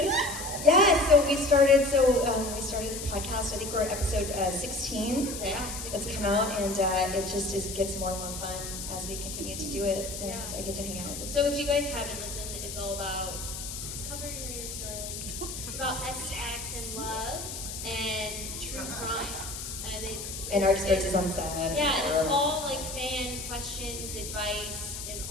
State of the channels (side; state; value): left; noise; hiss, 7 dB below the sound